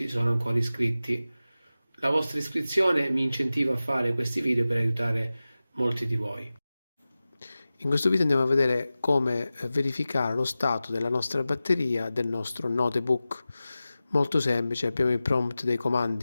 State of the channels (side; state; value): both; inverted; correlation -0.95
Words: sono ancora iscritti. La vostra iscrizione mi incentiva a fare questi video per aiutare molti di voi. In questo video andiamo a vedere come verificare lo stato della nostra batteria del nostro notebook. Molto semplice, abbiamo il prompt dei